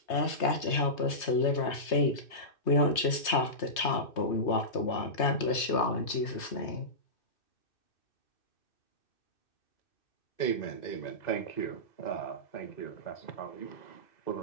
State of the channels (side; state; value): right; late; 3.3 ms